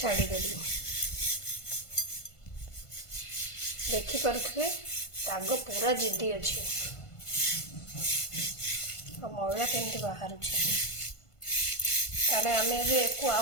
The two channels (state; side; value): late; right; 1.5 ms